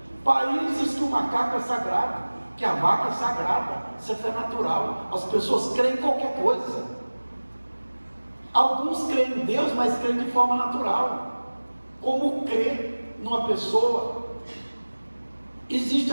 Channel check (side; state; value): both; inverted; correlation -1.00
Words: Países que o macaco é sagrado, que a vaca é sagrada, isso é fé natural. As pessoas creem em qualquer coisa. Alguns creem em Deus, mas creem de forma natural. Como crer numa pessoa. Existe